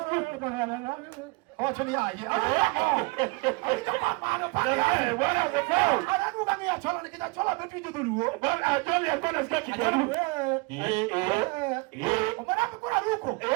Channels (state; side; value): quieter; left; 27.7 dB